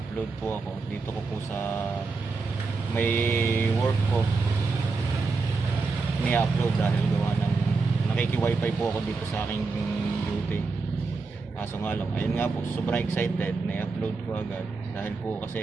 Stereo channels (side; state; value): left; quieter; 4.2 dB